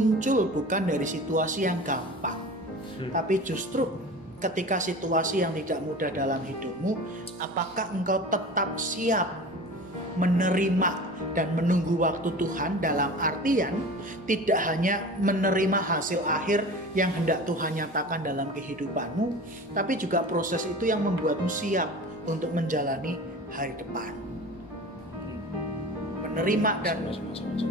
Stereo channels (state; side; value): noise; right; hum, 27 dB below the sound